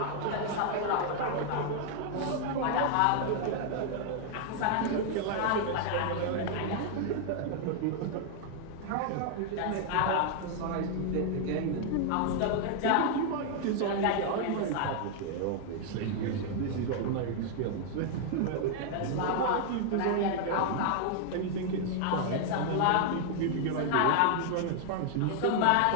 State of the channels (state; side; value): different; both; correlation 0.00